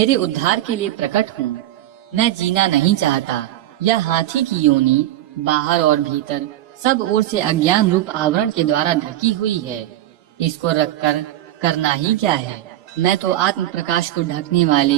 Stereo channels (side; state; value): left; quieter; 13.9 dB